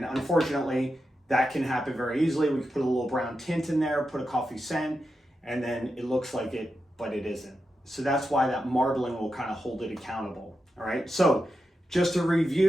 unfortunately, that can happen very easily. We can put a little brown tint in there, put a coffee scent, and then it looks like it, but it isn't. So that's why that marbling will kind of hold it accountable. All right, so just to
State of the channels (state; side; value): normal; both; correlation 0.88